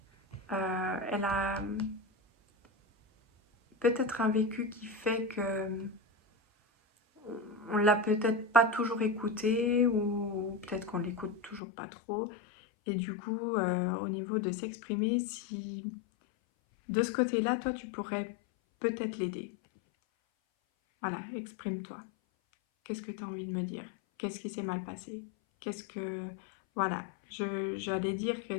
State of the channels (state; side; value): drops out; right; at 11.6 s